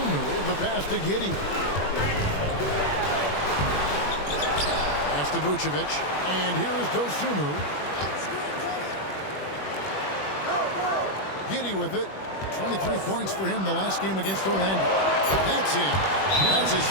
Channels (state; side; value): late; right; 21 ms